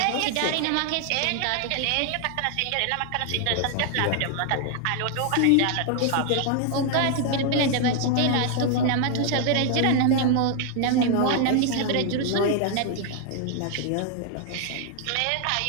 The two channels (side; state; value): both; different; correlation 0.00